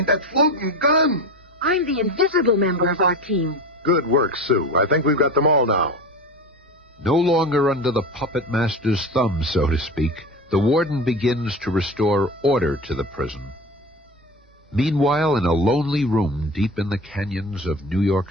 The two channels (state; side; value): normal; both; correlation 0.30